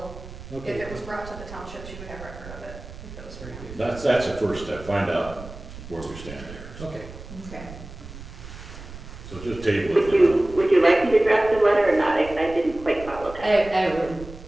if Okay. it was brought to the township, she would have record of it, if it was for Very him. good. That's the first step, find out where we stand there. Okay. okay. So just table it. Would you like me to draft a letter or not? I didn't quite follow that. I would,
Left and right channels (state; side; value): noise; right; rumble, 14 dB below the sound